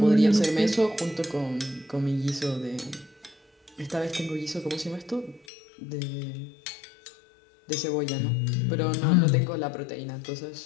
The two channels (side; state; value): right; drops out; at 5.5 s